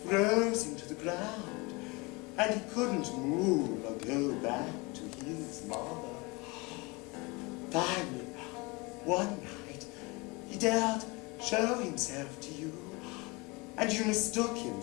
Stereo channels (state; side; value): quieter; right; 26.3 dB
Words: froze him to the ground, and he couldn't move or go back to his mother. Finally, one night, he dared show himself to you, and you mistook him